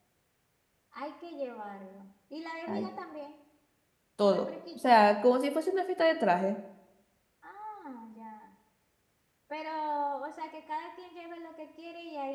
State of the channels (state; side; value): identical; both; correlation 1.00